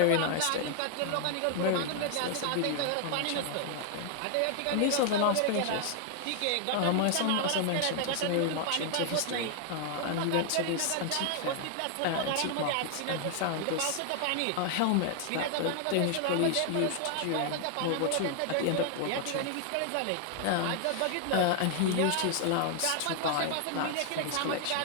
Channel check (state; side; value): different; both; correlation 0.00